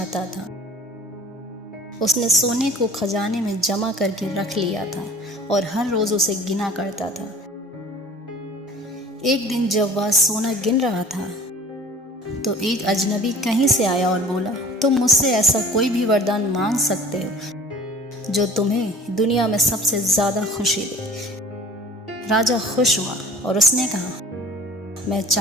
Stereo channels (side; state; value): both; normal; correlation 0.47